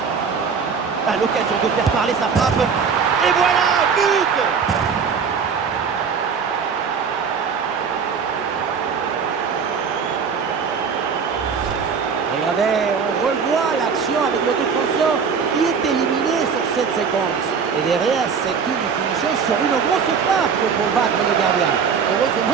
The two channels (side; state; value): left; quieter; 6.1 dB